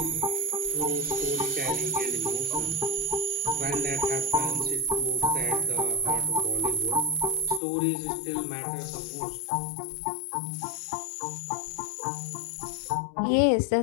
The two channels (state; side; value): drops out; right; at 7.6 s